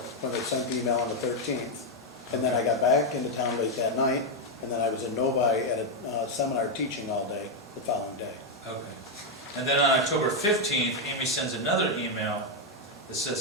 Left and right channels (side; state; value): both; normal; correlation 0.02